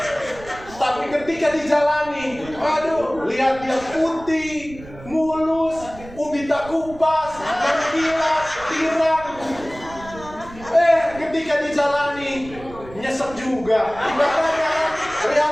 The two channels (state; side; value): noise; right; rumble, 17 dB below the sound